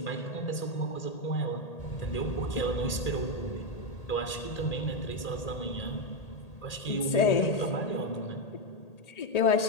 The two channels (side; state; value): right; late; 1.8 ms